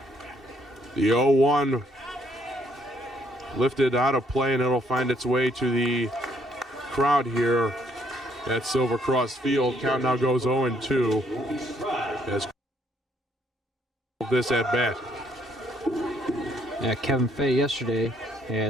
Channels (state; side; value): normal; both; correlation 0.68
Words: The 0-1 lifted out of play, and it'll find its way to the crowd here at Silver Cross Field. Count now goes 0-2 as this at bat. Yeah, Kevin Fay yesterday